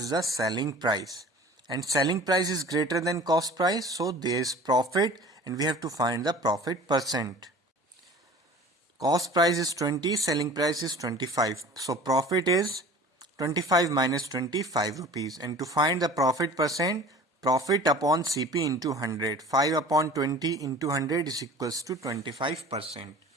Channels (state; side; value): normal; both; correlation 0.43